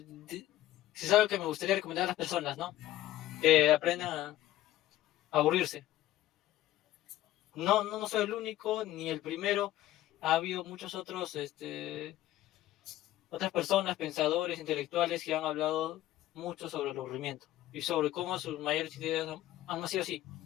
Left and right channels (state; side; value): quieter; right; 14.5 dB